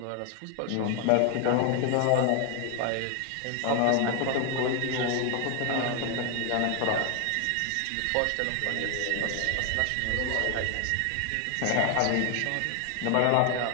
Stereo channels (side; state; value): both; different; correlation 0.00